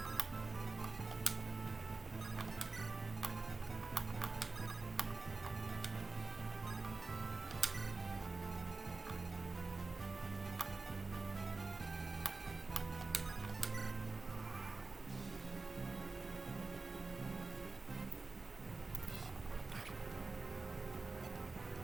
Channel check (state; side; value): quieter; left; 3.8 dB